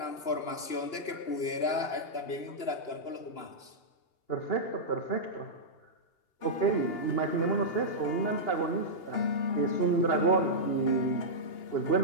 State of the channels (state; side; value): late; right; 2.8 ms